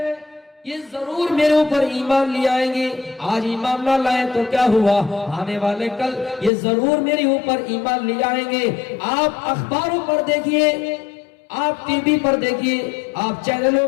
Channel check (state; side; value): drops out; right; at 6.5 s